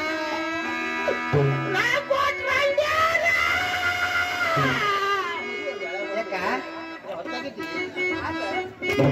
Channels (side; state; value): both; identical; correlation 1.00